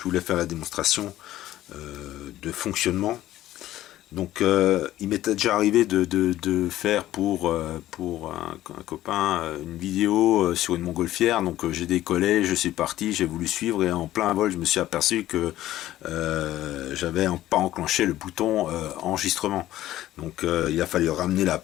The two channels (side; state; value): right; quieter; 14.3 dB